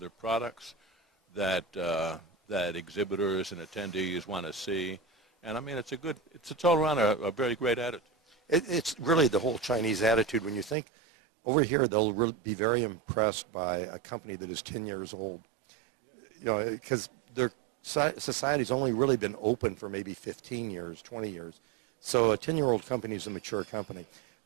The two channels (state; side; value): drops out; left; at 10.8 s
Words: products that exhibitors and attendees want to see. And I mean, it's all around a very great attitude. It's really the whole Chinese attitude. When you think over here, they'll really be very impressed by a company that is 10 years old. You know, because their society's only really been open for maybe 15 years, 20 years. So a 10-year-old company is a mature company.